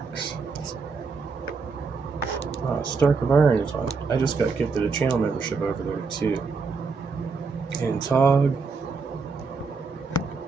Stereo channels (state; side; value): quieter; left; 4.7 dB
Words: Stark of Iron is on. I just got gifted a channel membership over there too. And Tog.